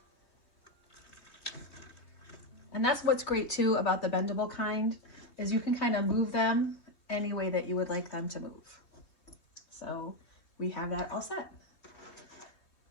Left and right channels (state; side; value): late; right; 3.2 ms